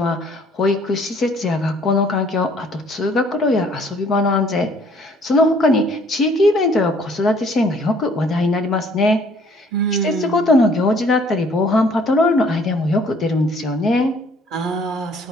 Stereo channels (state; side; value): normal; both; correlation 0.59